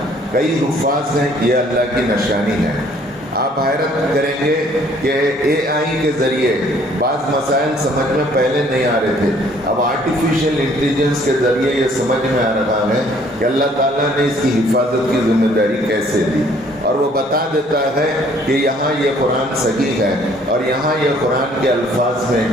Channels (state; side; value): normal; both; correlation 0.60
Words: کئی حفاظ ہیں، یہ اللہ کی نشانی ہے۔ آپ حیرت کریں گے کہ اے آئی کے ذریعے بعض مسائل سمجھ میں پہلے نہیں آ رہے تھے، اب آرٹیفیشل انٹیلیجنس کے ذریعے یہ سمجھ میں آ رہا ہے کہ اللہ تعالیٰ نے اس کی حفاظت کی ذمہ داری کیسے دی، اور وہ بتا دیتا ہے کہ یہاں یہ قرآن صحیح ہے اور یہاں یہ قرآن کے الفاظ میں